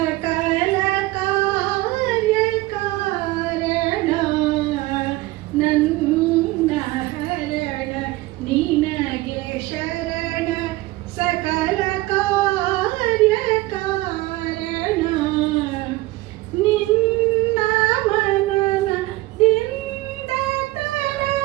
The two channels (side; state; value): left; quieter; 19.1 dB